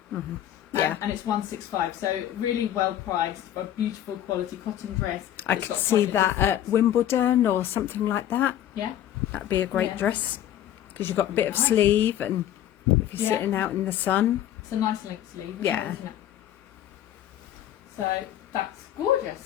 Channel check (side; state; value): right; quieter; 11.6 dB